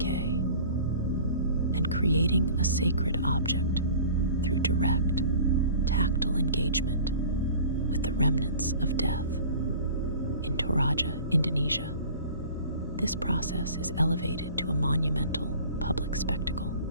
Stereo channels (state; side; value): inverted; both; correlation -0.44